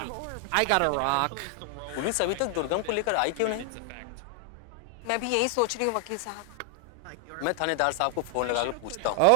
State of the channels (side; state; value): both; different; correlation 0.00